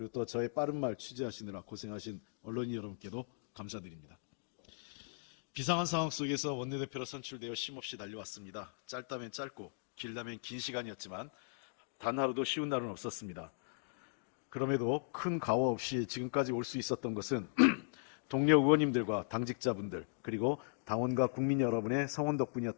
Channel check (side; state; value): right; silent; digital silence